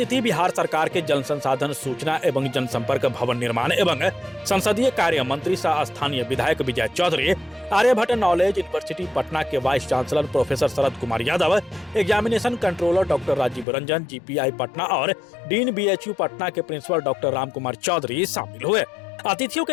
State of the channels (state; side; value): drops out; right; at 13.7 s